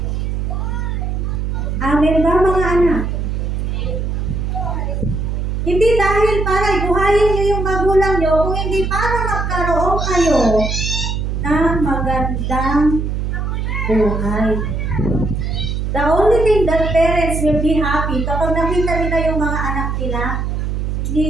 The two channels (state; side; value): noise; right; hum, 1 dB below the sound